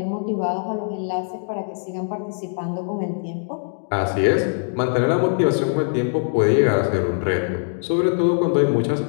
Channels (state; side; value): silent; right; digital silence